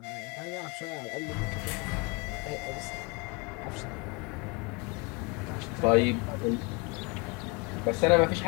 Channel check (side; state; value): right; quieter; 29.0 dB